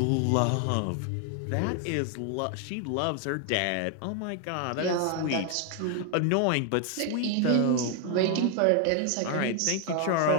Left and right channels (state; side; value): different; both; correlation 0.01